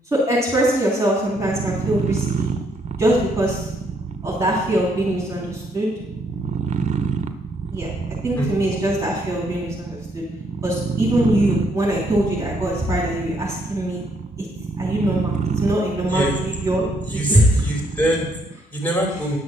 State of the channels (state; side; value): normal; both; correlation 0.71